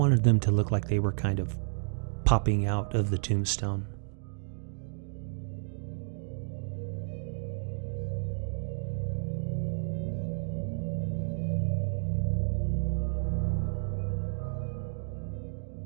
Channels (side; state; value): left; silent; 57 dB below the other